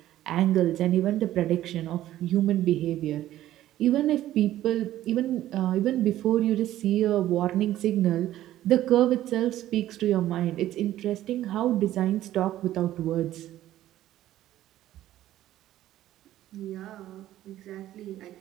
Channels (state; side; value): quieter; left; 13.6 dB